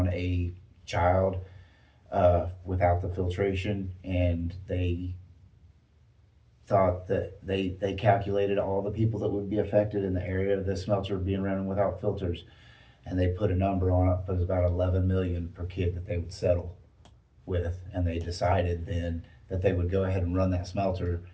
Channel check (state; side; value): identical; both; correlation 1.00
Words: a child without the filtration. And they thought that they calculated all the people that would be affected in the area of the smelter being running without filters, and they put a number on it. It was about 11 million per kid that they would settle with, and they decided then that they would go ahead and run that smelter.